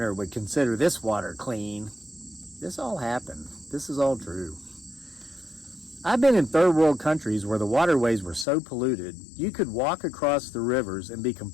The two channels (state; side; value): drops out; right; at 8.5 s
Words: would consider this water clean." This all happened. This is all true. I've been in third world countries where the waterways were so polluted, you could walk across the rivers and be